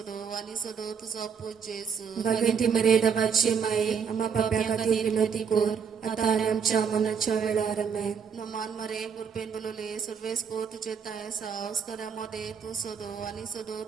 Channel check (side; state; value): left; quieter; 6.7 dB